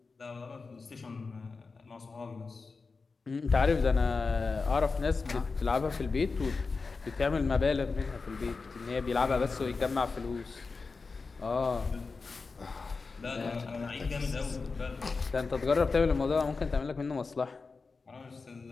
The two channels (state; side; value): quieter; right; 4.3 dB